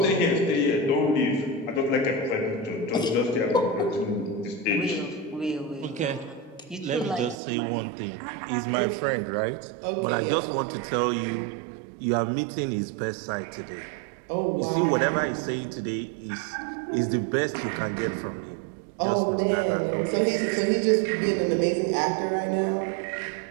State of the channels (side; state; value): left; drops out; at 7.4 s